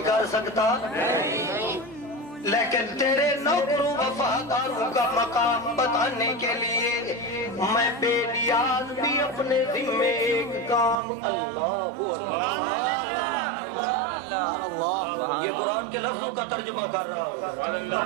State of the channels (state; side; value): drops out; left; at 11.0 s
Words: کر سکتا نہیں، لیکن تیرے نوکروں وفاداروں کا مقام بتانے کے لیے میں بے نیاز بھی اپنے ذمے ایک کام اللہ یہ قرآن کے لفظوں کا ترجمہ کر رہا ہوں،